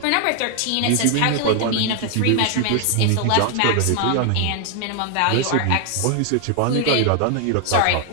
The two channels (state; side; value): different; both; correlation 0.00